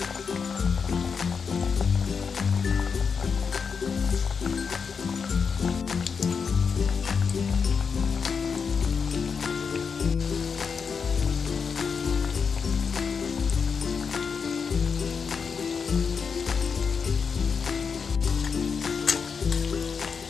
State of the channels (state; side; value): quieter; right; 5.9 dB